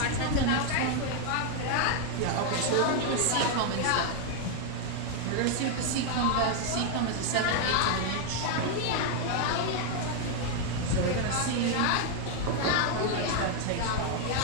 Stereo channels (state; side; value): different; both; correlation 0.00